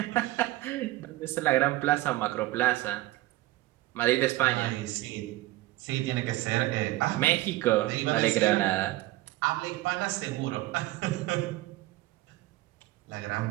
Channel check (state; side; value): quieter; left; 17.6 dB